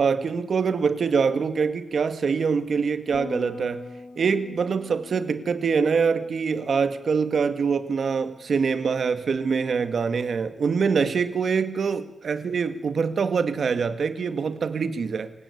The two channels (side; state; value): left; quieter; 5.2 dB